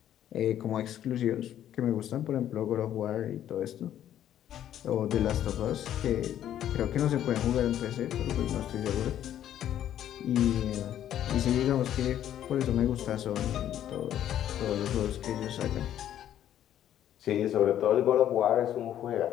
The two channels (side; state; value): right; quieter; 11.1 dB